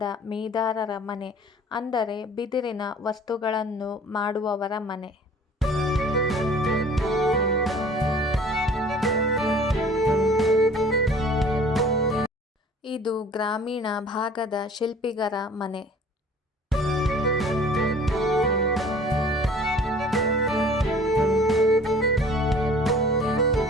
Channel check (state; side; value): normal; both; correlation 0.49